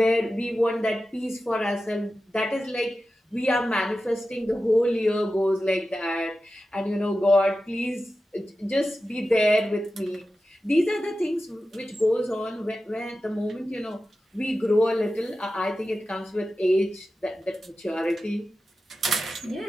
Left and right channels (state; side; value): normal; both; correlation 0.93